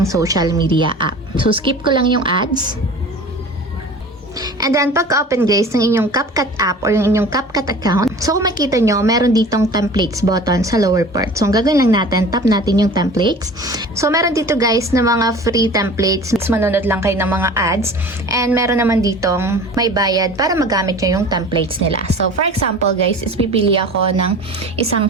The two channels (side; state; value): both; normal; correlation 0.41